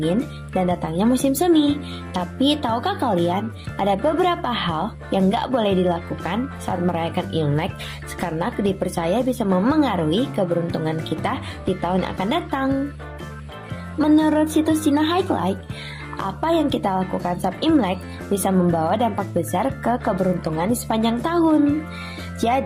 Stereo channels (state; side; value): identical; both; correlation 1.00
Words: dan datangnya musim semi. Tapi tahukah kalian, ada beberapa hal yang gak boleh dilakukan saat merayakan Imlek karena dipercaya bisa memengaruhi keberuntungan kita di tahun yang akan datang. Menurut situs Cina Highlight, apa yang kita lakukan saat Imlek bisa membawa dampak besar ke keberuntungan di sepanjang tahun.